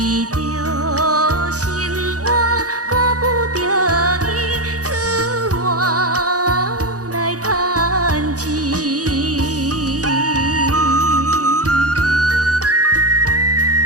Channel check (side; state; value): left; late; 0.67 ms